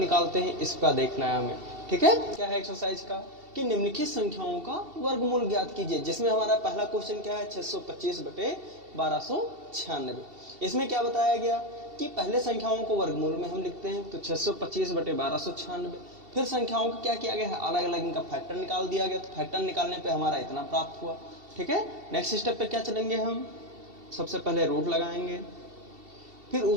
हैं इसका देखना है हमें। ठीक है, क्या है एक्सरसाइज का कि निम्नलिखित संख्याओं का वर्गमूल ज्ञात कीजिए। जिसमें हमारा पहला क्वेश्चन क्या है, 625 बटे 1296। इसमें क्या बताया गया कि पहले संख्याओं को वर्गमूल में हम लिखते हैं, तो 625 बटे 1296। फिर संख्याओं को क्या किया गया है, अलग अलग इनका फैक्टर निकाल दिया गया। तो फैक्टर निकालने पे हमारा इतना प्राप्त हुआ। ठीक है, नेक्स्ट स्टेप पे क्या चलेंगे हम, सबसे पहले रूट लगाएंगे। फिर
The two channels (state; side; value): late; left; 2.7 ms